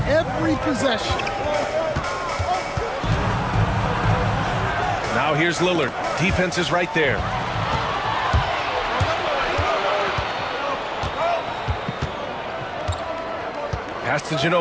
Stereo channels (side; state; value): both; identical; correlation 1.00